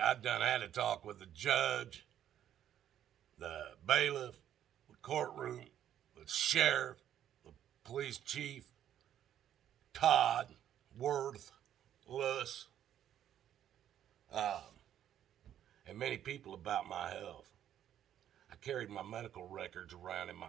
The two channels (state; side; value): quieter; left; 10.7 dB